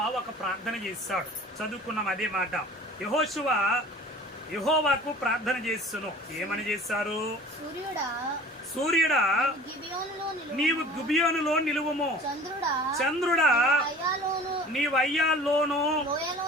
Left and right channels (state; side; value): normal; both; correlation 0.44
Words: ఒక ప్రార్థన చేశాడు. చదువుకున్నాం అదే మాట. యెహోషువ యెహోవాకు ప్రార్థన చేస్తును. ఏమని చేశారు? సూర్యుడా నీవు గిబియోనులో నిలువుము, చంద్రుడా నీవు అయ్యాల్లోను